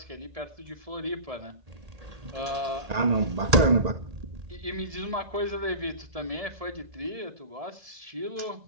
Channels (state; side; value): late; left; 1.8 ms